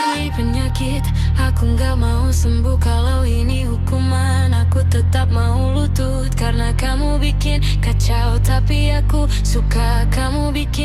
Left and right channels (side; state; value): both; identical; correlation 1.00